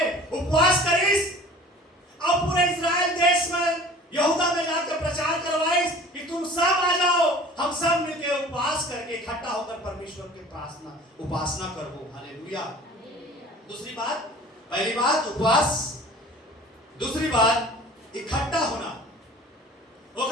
उपवास करीस और पूरे इस्राएल देश में यहूदा में जाकर प्रचार करवाइस कि तुम सब आ जाओ, हम सब मिलकर उपवास करके इकट्ठा होकर परमेश्वर की प्रार्थना उपासना करो। हालेलुया। दूसरी बात, पहली बात उपवास, दूसरी बात इकट्ठा होना।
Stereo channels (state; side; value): normal; both; correlation 0.45